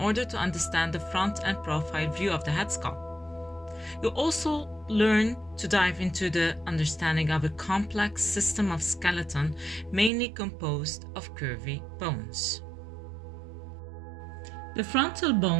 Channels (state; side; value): drops out; left; at 10.1 s